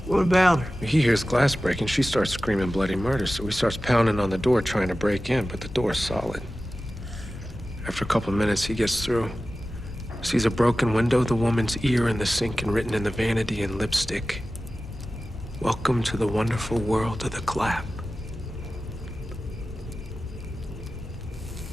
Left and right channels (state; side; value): normal; both; correlation 0.95